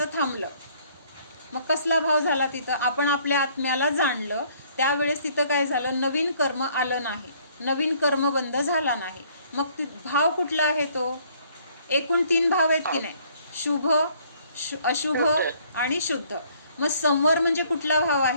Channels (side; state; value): both; inverted; correlation -0.61